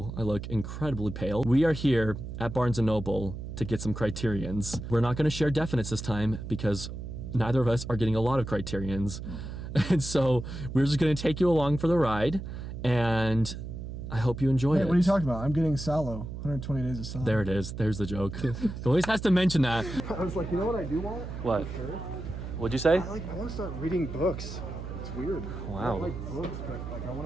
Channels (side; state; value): right; noise; hum, 8 dB below the sound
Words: I look incredibly pale. We are here at Barnes & Noble to get some Criterions. We're not going to share definites this time because neither of us are getting a lot of Criterions. And so we're just going to take you along for the ride, and I hope you enjoy it. What are you talking about? I'm getting Salo. 120 days of Salo. There it is. There's the joke. He always has to mention that. I was like, you know what I do want? What? For sure? What'd you say? I want to start reading books. It's weird. Wow. I don't like books, but like I